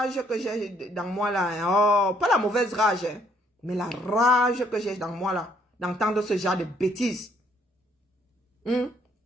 que j'ai dans moi là, oh, pas la mauvaise rage, hein, mais la rage que j'ai dans moi là, d'entendre ce genre de bêtises.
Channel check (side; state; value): both; normal; correlation 0.67